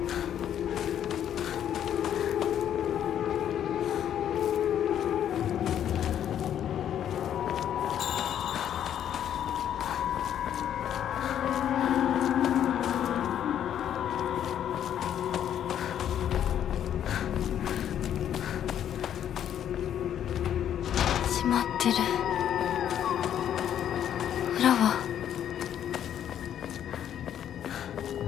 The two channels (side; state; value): right; quieter; 10.0 dB